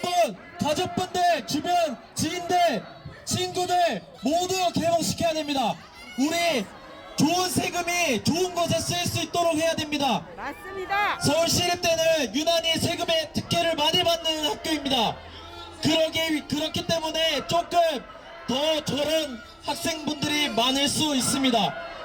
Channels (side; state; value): both; identical; correlation 1.00